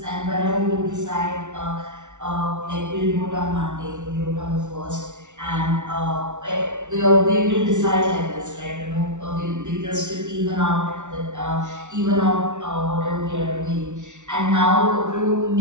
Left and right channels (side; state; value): left; late; 0.85 ms